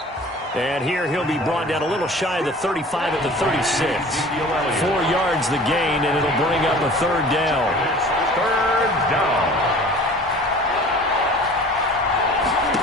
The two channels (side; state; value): both; normal; correlation 0.45